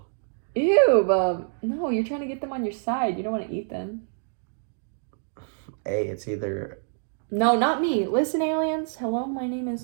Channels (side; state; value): left; silent; digital silence